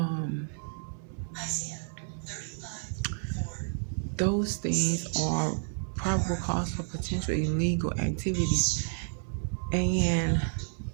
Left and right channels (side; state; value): left; silent; 57 dB below the other